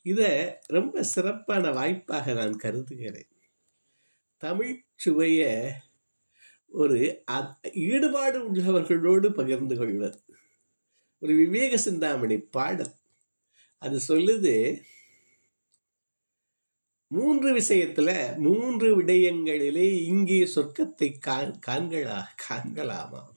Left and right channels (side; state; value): both; inverted; correlation -1.00